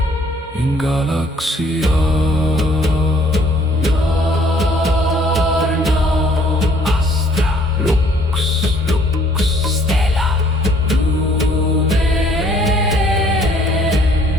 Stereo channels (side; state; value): both; normal; correlation 0.61